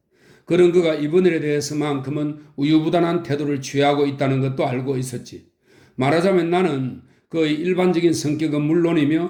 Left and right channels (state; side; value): identical; both; correlation 1.00